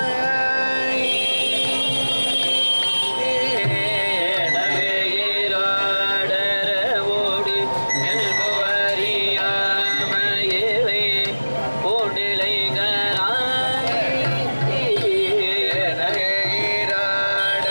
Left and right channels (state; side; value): inverted; both; correlation -1.00